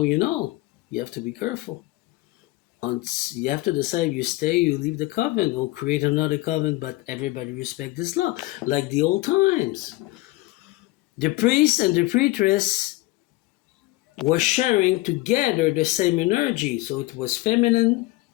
you know. You have to be careful. You have to decide you stay, you leave the coven, or create another coven, but everybody respect this law. Like the old times. The priest and the priestess were sharing together the same energy. So it was feminine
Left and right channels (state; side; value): quieter; right; 20.0 dB